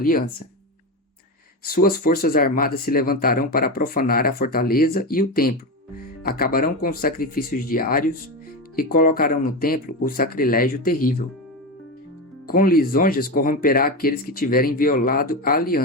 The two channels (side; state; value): both; normal; correlation 0.17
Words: Suas forças armadas se levantarão para profanar a fortaleza e o templo, acabarão com os sacrifícios diários e colocarão no templo o sacrilégio terrível. Com lisonjas corromperá aqueles que tiverem violado a